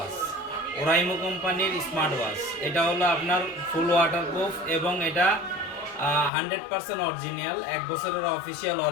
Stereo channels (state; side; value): drops out; right; at 6.3 s